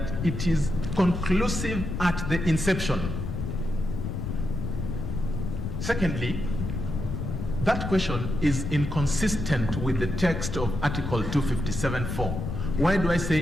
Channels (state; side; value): noise; left; rumble, 4 dB below the sound